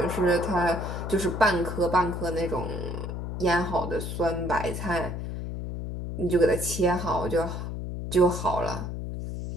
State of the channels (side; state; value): left; noise; hum, 5 dB below the sound